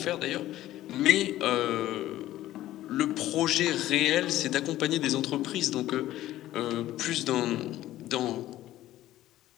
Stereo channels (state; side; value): quieter; right; 14.4 dB